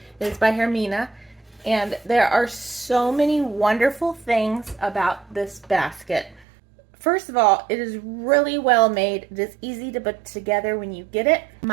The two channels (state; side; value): drops out; left; at 6.5 s